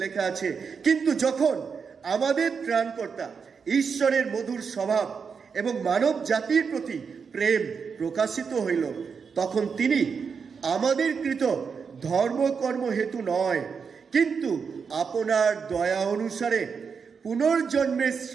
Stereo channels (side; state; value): left; quieter; 5.9 dB